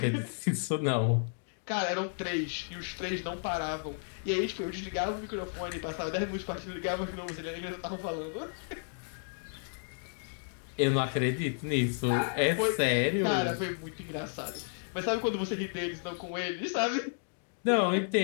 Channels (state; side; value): silent; right; digital silence